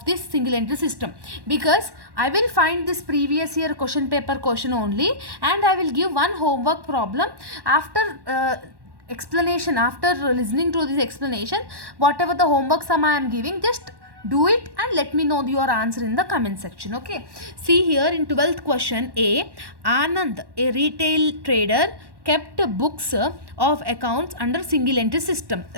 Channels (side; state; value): left; late; 1.1 ms